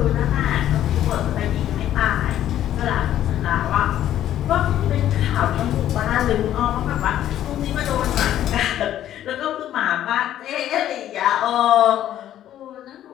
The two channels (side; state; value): right; quieter; 11.8 dB